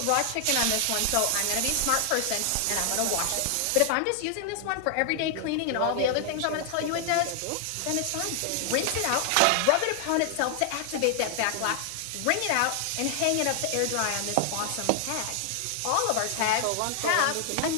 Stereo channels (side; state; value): both; different; correlation 0.00